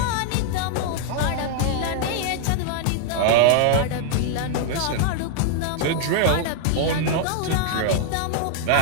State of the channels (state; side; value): different; both; correlation 0.00